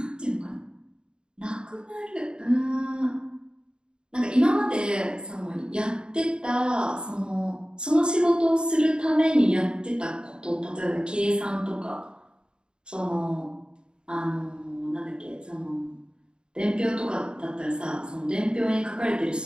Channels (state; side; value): late; left; 0.050 ms